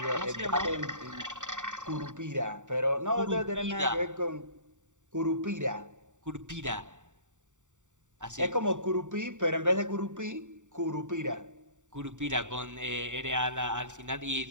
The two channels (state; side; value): late; left; 0.86 ms